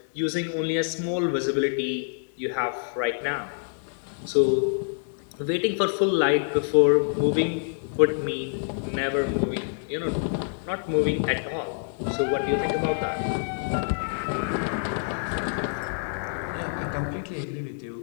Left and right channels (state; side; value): silent; right; 60 dB below the other